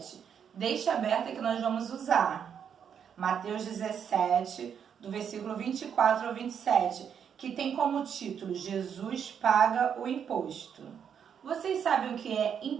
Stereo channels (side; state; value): left; quieter; 7.9 dB